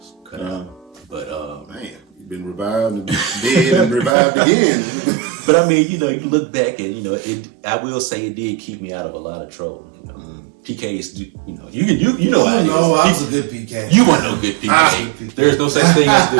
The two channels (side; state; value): left; drops out; at 4.2 s